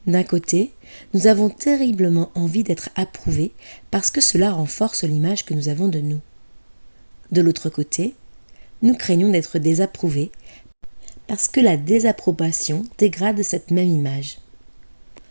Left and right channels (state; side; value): inverted; both; correlation -1.00